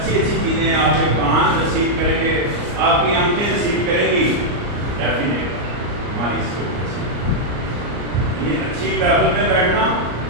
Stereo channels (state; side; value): late; left; 34 ms